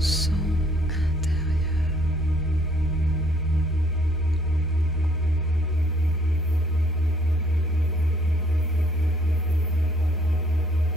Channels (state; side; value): normal; both; correlation 0.63